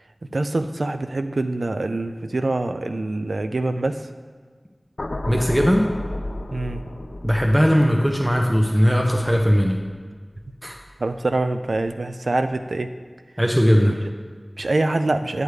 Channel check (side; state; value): both; normal; correlation 0.98